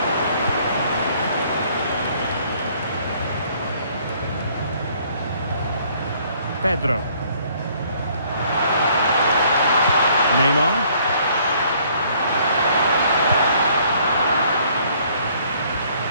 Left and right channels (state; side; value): inverted; both; correlation -0.62